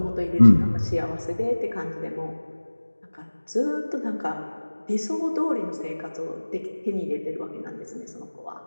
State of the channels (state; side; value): inverted; both; correlation -1.00